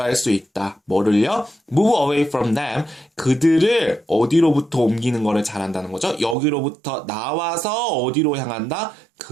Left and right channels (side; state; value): left; drops out; at 6.4 s